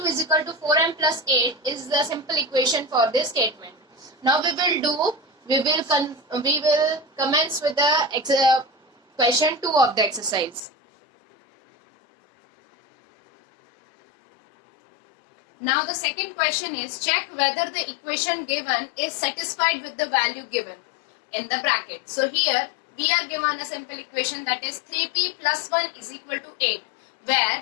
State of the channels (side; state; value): right; drops out; at 10.6 s